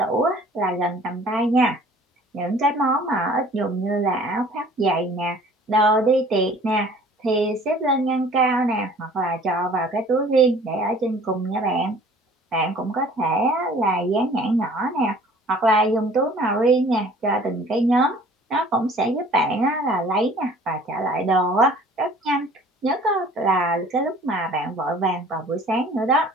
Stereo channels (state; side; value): normal; both; correlation 0.51